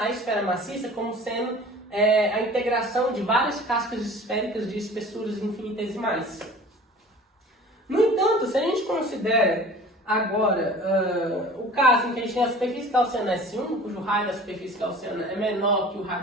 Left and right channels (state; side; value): normal; both; correlation 0.43